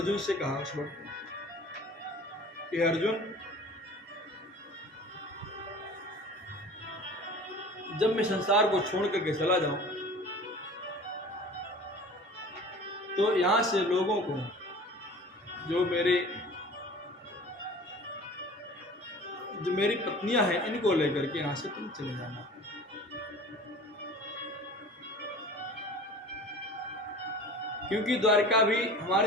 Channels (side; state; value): both; normal; correlation 0.42